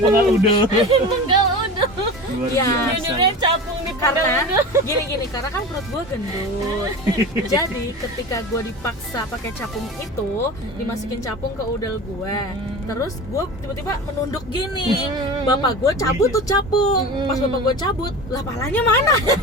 udah. Enggak udah. Luar Iya. biasa. Judulnya capung di Karena udah. gini karena kan perut gue gendut. Jadi ketika gue dipaksa pakai capung itu, dimasukin capung ke udel gue, terus gue tiba-tiba menunduk gini. Bapak gue cabut tuh capung. Pas bapak gue cabut, lah palanya mana?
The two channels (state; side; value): normal; both; correlation 0.32